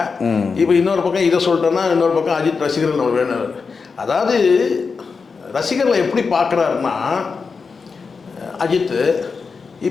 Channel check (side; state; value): right; quieter; 5.0 dB